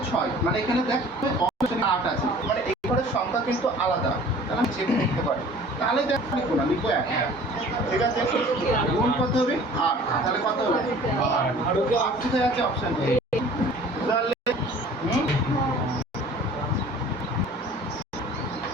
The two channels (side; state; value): both; normal; correlation 0.48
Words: 6, মানে এখানে দেখ অপশন 8 আছে, মানে এই ঘরের সংখ্যা কিন্তু আলাদা, তাহলে আমি চেক করতে পারি। তাহলে দেখ লিখবো না, লিখবো 1। ঠিক আছে, গুণ কত হবে 8, তাহলে কত হবে 8 কোথায় আছে অপশন এ, তাহলে